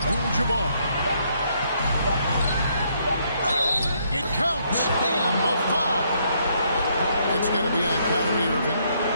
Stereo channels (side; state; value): both; inverted; correlation -0.72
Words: It counts. And the foul. It's going to be on Kyrie Irving.